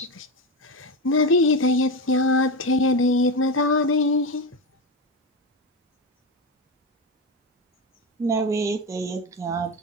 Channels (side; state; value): both; normal; correlation 0.15